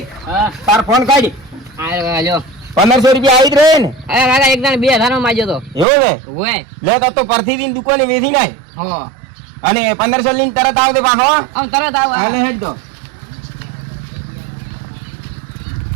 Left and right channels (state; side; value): drops out; left; at 5.9 s